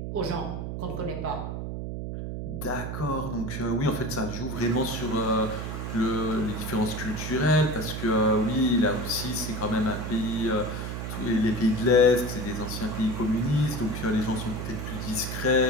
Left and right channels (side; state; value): right; noise; hum, 5 dB below the sound